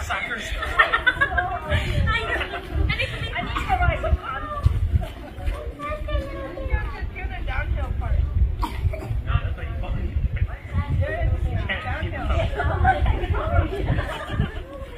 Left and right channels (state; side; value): identical; both; correlation 1.00